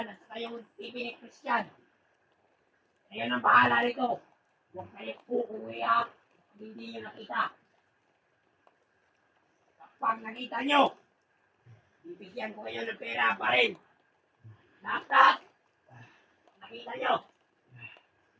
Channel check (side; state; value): both; identical; correlation 1.00